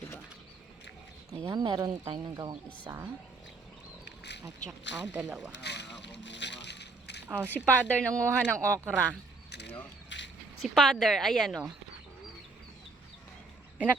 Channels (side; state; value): left; quieter; 3.7 dB